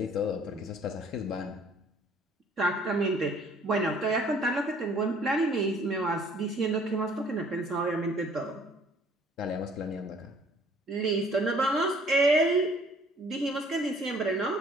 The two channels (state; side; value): normal; both; correlation 0.57